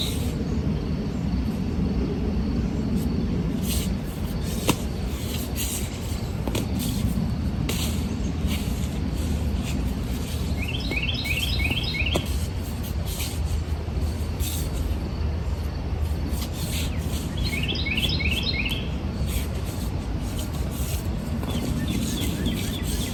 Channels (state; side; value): identical; both; correlation 1.00